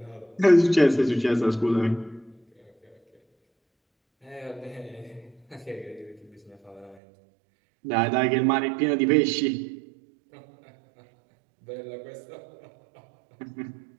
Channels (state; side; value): drops out; left; at 7.0 s